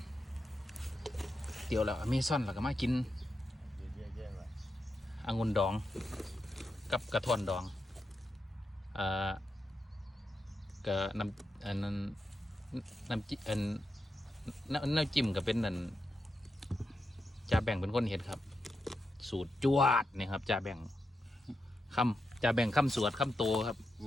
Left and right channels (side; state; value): both; normal; correlation 0.86